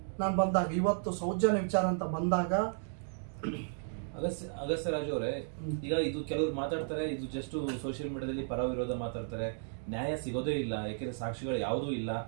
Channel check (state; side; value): silent; left; digital silence